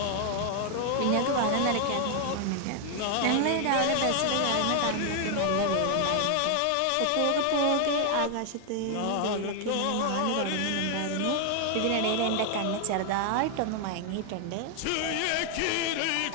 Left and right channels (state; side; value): different; both; correlation 0.00